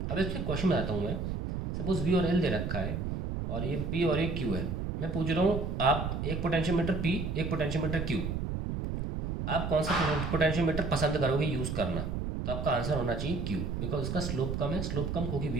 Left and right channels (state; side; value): noise; right; rumble, 3 dB below the sound